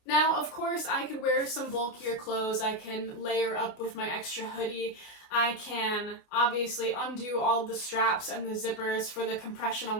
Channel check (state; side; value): late; right; 29 ms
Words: Now, of course, I could wear some bulkier clothes. I can layer up with my extra hoodie. I can obviously undo all of the straps and the zippers for the compression on